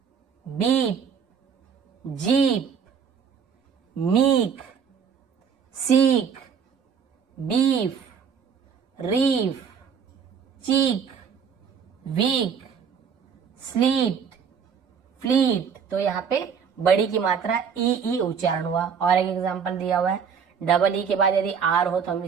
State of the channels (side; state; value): left; quieter; 6.9 dB